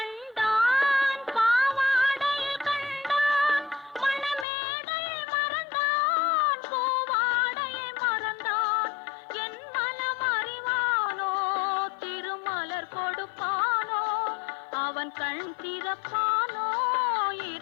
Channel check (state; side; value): drops out; right; at 4.5 s